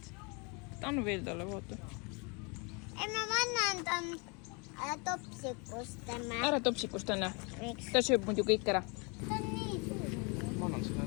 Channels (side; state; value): right; quieter; 31.8 dB